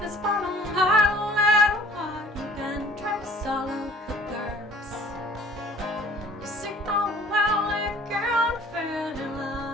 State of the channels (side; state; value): both; normal; correlation 0.51